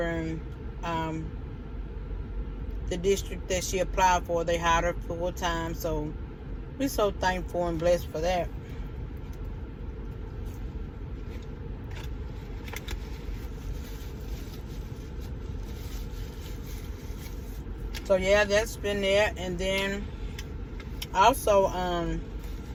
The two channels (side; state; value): both; identical; correlation 1.00